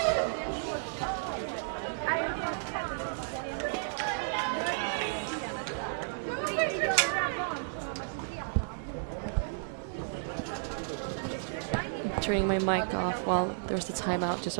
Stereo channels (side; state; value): left; silent; digital silence